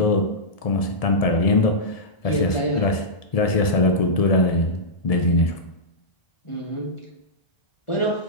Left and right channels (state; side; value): late; right; 1.7 ms